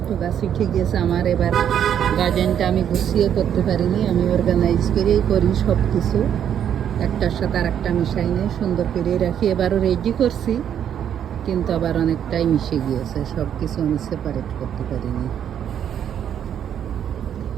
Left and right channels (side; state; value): left; quieter; 9.3 dB